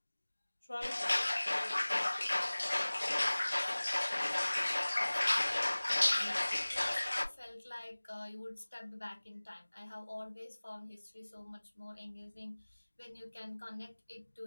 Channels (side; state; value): both; inverted; correlation -1.00